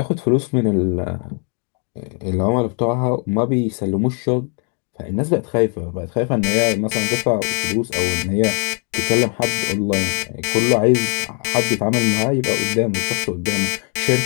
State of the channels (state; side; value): quieter; right; 39.4 dB